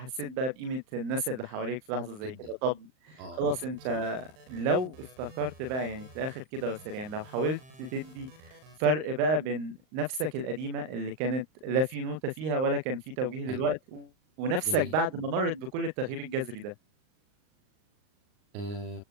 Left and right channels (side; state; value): left; late; 39 ms